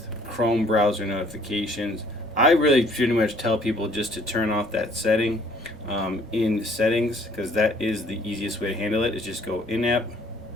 Chrome browser notifications. I really pretty much tell people just to turn off that setting in settings, because that is the easiest way to handle it. Is just go in app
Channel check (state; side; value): normal; both; correlation 0.59